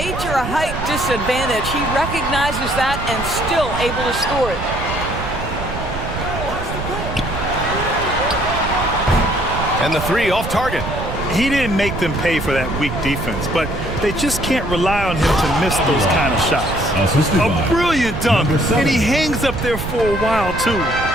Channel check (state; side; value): noise; right; rumble, 7 dB below the sound